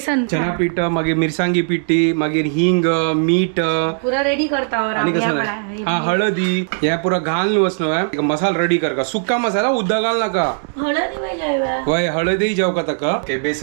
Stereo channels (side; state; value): left; silent; 67 dB below the other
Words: चना पीठ मागीर मिरसांगी पिठी मागीर हिंग मीठ पुरा रेडी करता आणि कसं हा हळदी हे पुरा घाल न्हू मसाला रेडी कर का सुक्का मसाला उद्दा घाल नाका हळदी पाहिजे वय हळदी जेव का ताका